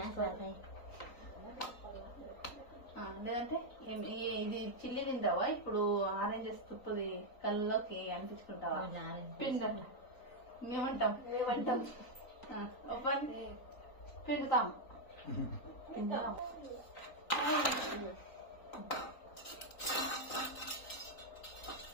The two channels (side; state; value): right; late; 3.9 ms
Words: లేదంటే ఇది చిల్లి తింటావా? ఇప్పుడు ఆరెంజెస్ తుప్పుది కళ్ళలోకి అనిపించుకుంటావా? పిండి మేమంటాం పిండుతాం.